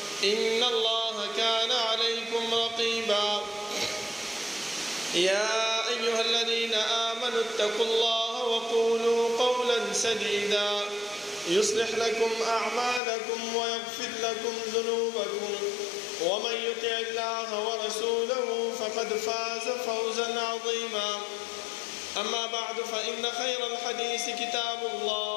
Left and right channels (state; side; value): drops out; right; at 13.0 s